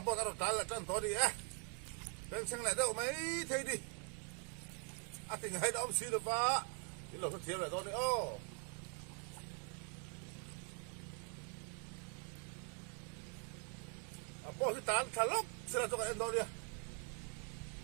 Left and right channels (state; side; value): quieter; left; 38.3 dB